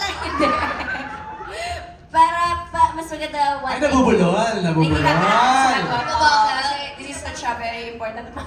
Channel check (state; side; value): identical; both; correlation 1.00